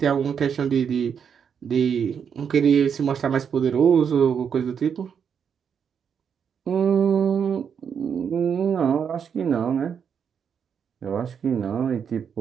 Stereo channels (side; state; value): left; quieter; 7.3 dB